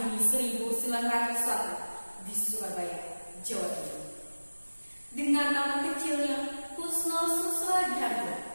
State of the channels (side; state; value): both; inverted; correlation -1.00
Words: 1901 di Surabaya, Jawa Timur. Dengan nama kecilnya Kusno Susradiharjo